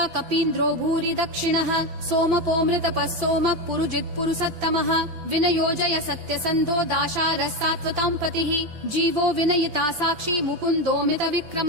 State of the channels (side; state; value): left; late; 5.9 ms